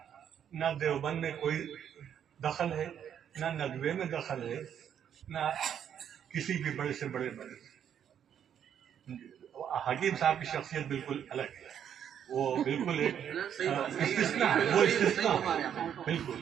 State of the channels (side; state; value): left; quieter; 9.1 dB